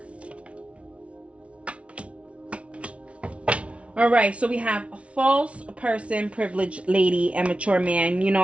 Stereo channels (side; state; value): left; late; 0.062 ms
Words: Alright, so we have a false person, privileged lady, and mature man. You know,